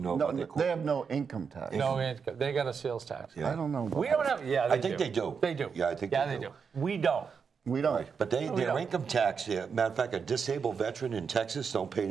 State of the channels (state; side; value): quieter; left; 6.0 dB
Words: know No, about their they have no income tax. No income. They got a sales tax. Yeah. I don't know. About We don't have. Yeah, I think they do. They do. Yeah, I think Yeah, they they do. do. We don't. We don't. But their don't. income tax, matter of fact, a disabled veteran in Texas don't